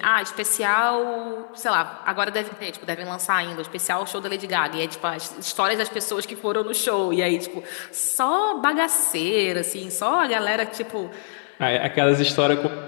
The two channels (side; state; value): right; silent; 63 dB below the other